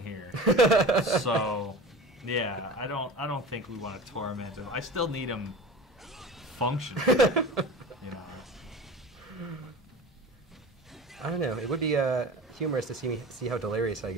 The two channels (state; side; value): normal; both; correlation 0.35